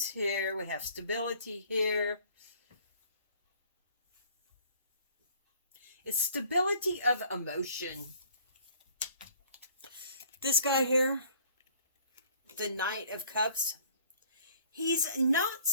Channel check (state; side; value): inverted; both; correlation -0.56